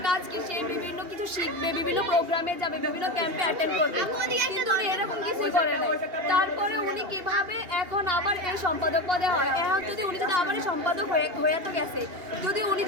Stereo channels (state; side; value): late; left; 2.8 ms